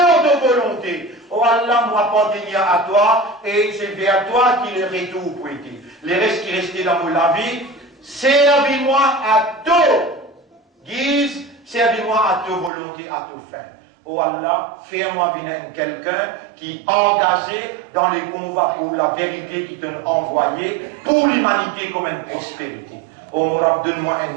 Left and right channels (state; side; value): drops out; left; at 12.7 s